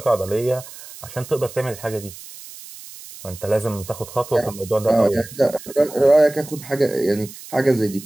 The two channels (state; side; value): noise; right; hiss, 16 dB below the sound